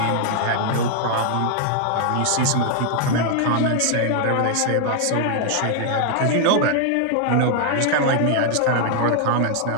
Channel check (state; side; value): different; both; correlation 0.00